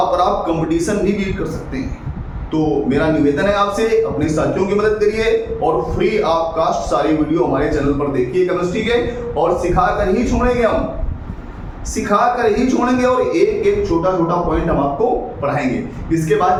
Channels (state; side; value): identical; both; correlation 1.00